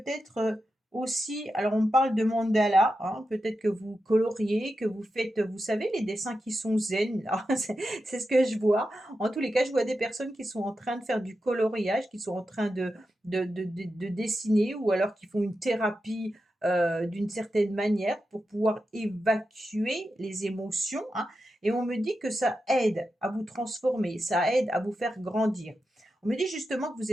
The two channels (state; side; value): normal; both; correlation 0.89